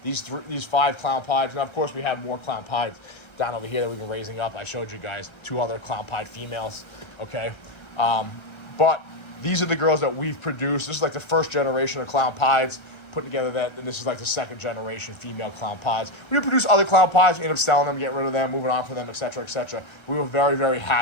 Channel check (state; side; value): late; right; 1.3 ms